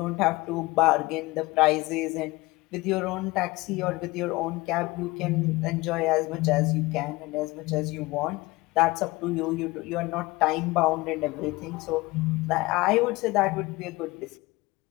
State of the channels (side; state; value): right; quieter; 21.5 dB